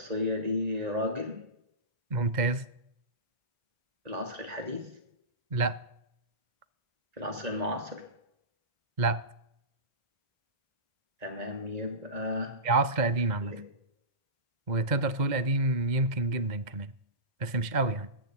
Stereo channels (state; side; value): late; left; 2.0 ms